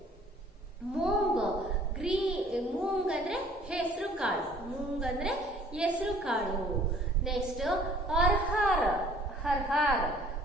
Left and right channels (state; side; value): normal; both; correlation 0.55